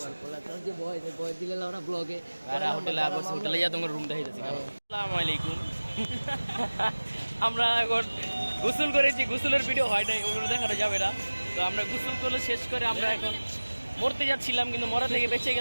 যে বয় দিলে ওরা ব্লগে হোটেলে আবুরছি হোটেলে যা তোমার রুম দেখাইতেছি আসসালামু আলাইকুম আমরা এখন গোসল করেছি গোসলের ভিডিও হয় নাই ওগুলো দেখানো যাবে না তো আমরা গোসল করে শেষ করে আমরা এখন মরতে যাচ্ছিলাম কিন্তু মরা থেকে বেঁচে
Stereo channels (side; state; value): both; inverted; correlation -1.00